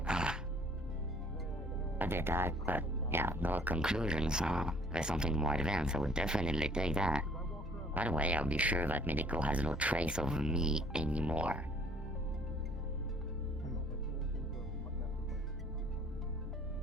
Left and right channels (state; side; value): normal; both; correlation 0.58